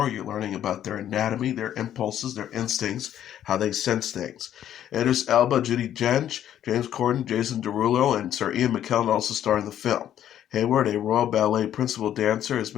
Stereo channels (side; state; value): right; quieter; 10.9 dB